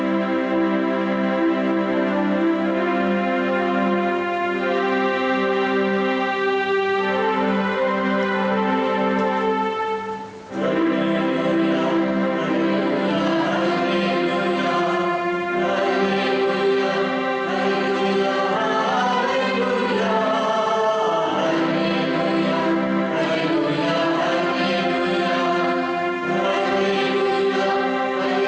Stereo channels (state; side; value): identical; both; correlation 1.00